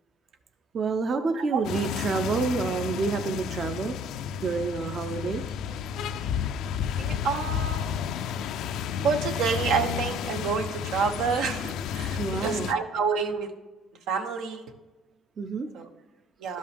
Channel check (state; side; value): normal; both; correlation 0.54